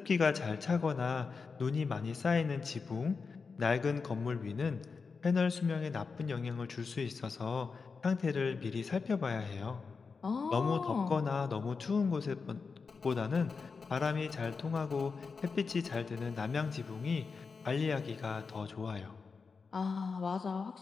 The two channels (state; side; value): quieter; right; 4.9 dB